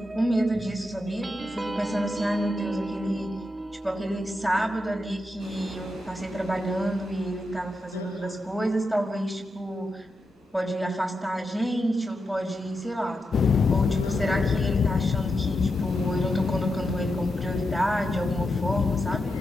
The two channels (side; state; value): both; normal; correlation 0.86